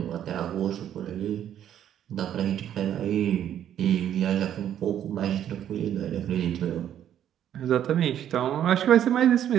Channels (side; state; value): left; quieter; 10.4 dB